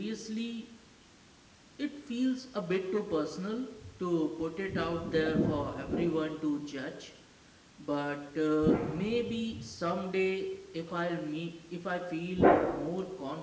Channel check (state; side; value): identical; both; correlation 1.00